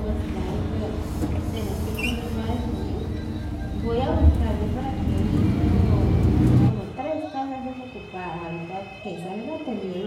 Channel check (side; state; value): both; identical; correlation 1.00